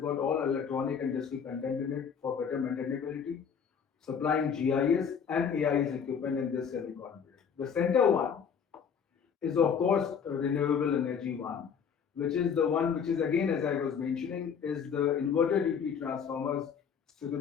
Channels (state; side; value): quieter; right; 7.0 dB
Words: all electronic and digital content in it for better maintainability, supplying GIS and AIS equipment in this semicon. The center one is of course a renewable energy one, which is the one which is again, as I was mentioning, is the inverter DP transformers